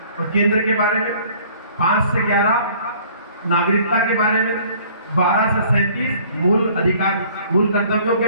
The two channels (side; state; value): both; inverted; correlation -0.54